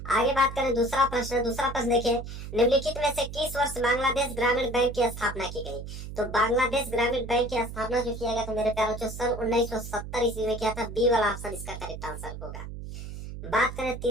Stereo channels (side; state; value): right; noise; hum, 9 dB below the sound